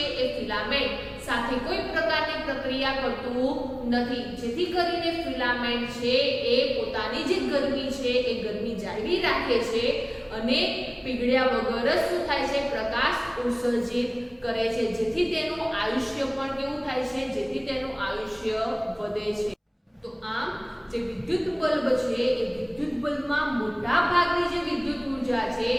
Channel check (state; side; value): identical; both; correlation 1.00